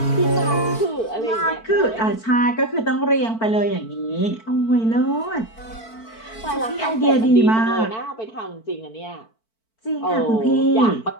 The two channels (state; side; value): late; right; 4.5 ms